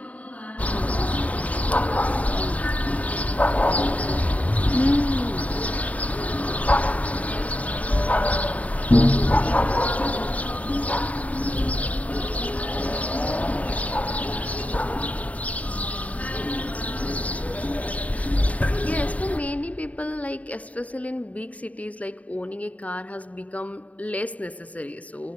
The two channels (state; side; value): late; right; 0.070 ms